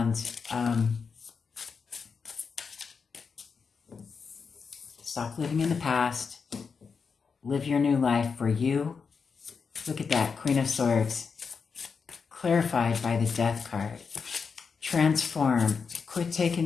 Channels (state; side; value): quieter; right; 5.5 dB